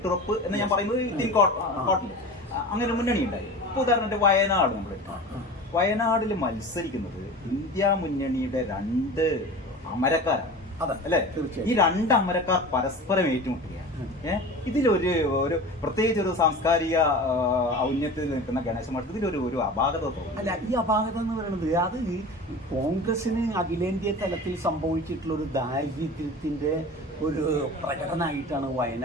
എന്ന് ഞാൻ പറയുന്നത് കോട്ടിൽ അങ്ങനെ മുന്നണി ഉണ്ടായി. ഇപ്പോൾ ഉദാഹരണത്തിന് വയനാട് നമ്മൾ വയനാടിൽ മത്സരിക്കുന്നത് ഇന്ത്യ മുന്നണിയുടെ 2 അമരക്കാരാണ് അല്ലേ. ഈ 2 അമരക്കാർ പരസ്പരം ഏറ്റുമുട്ടുകയാണ്. ഇതിലൊരു പ്രത്യേകിച്ച് ഒരു സാംസ്കാരിക ഔന്നത്യത്തിൽ നിൽക്കുന്ന ഗണേശ മഠത്തിൽ ഇതിലൊരു അപാകത തോന്നുന്നു. അല്ല, ഈ അപാകത എന്ന് പറയുന്നത് അത് കോൺഗ്രസിന് അഖിലേന്ത്യാ തലത്തിൽ സംഭവിച്ചിട്ടുള്ള ഒരു ദാരിദ്ര്യത്തിന്റെ ഒരു പ്രകടനമായിട്ടാണ്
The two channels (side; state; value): both; normal; correlation 0.35